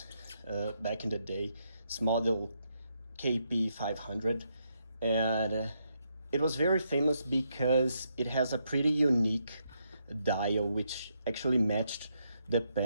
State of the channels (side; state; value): both; inverted; correlation -0.79